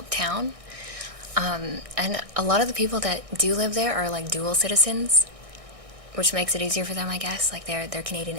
town. And a lot of the people that do live there are like dual citizens, which makes it easier for them, I guess. Like they're Canadian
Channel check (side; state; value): left; late; 1.6 ms